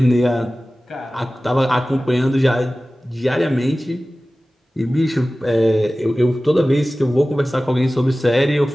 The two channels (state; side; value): normal; both; correlation 0.97